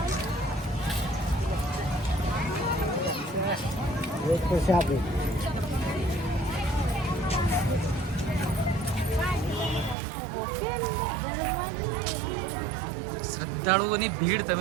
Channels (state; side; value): drops out; left; at 10.0 s